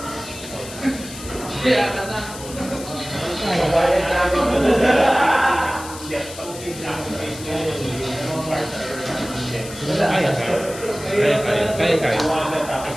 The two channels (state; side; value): noise; left; hiss, 13 dB below the sound